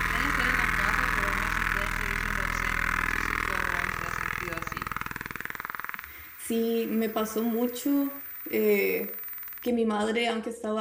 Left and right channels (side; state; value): both; identical; correlation 1.00